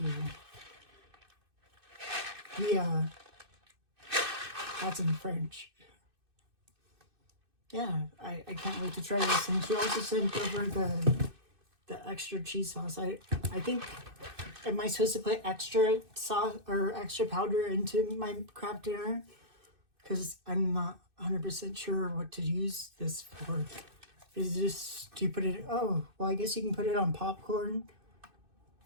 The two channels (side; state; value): left; late; 2.6 ms